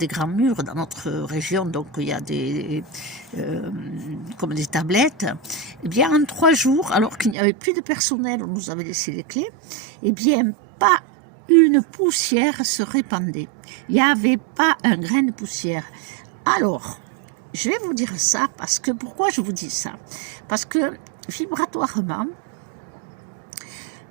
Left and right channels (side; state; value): left; drops out; at 7.4 s